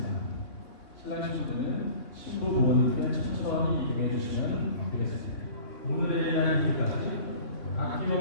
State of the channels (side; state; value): right; late; 3.5 ms